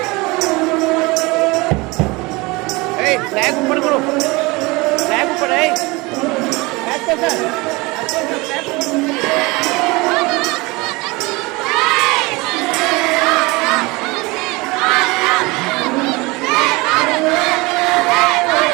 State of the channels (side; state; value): left; quieter; 24.2 dB